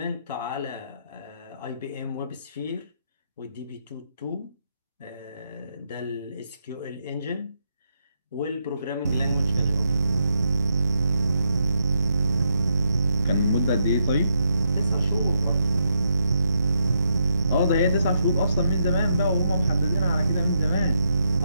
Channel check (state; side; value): inverted; both; correlation -0.79